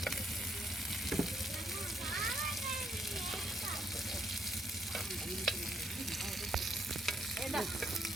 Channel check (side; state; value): both; normal; correlation 0.73